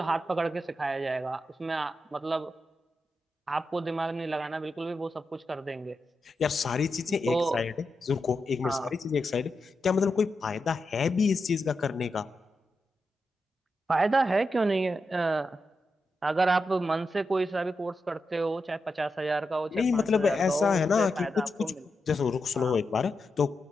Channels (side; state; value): both; normal; correlation 0.87